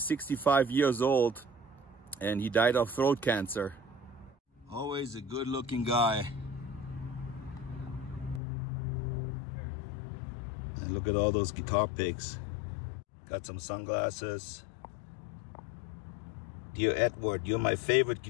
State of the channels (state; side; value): drops out; right; at 8.4 s